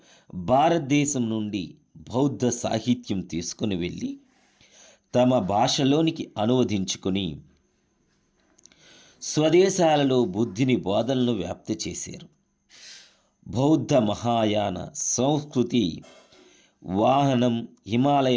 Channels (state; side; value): identical; both; correlation 1.00